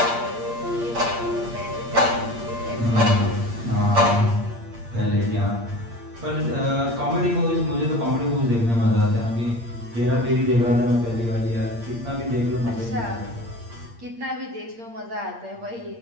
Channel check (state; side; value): late; left; 8.6 ms